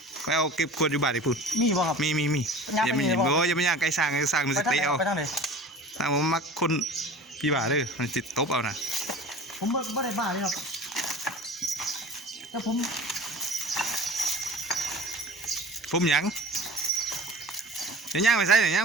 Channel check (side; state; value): both; normal; correlation 0.39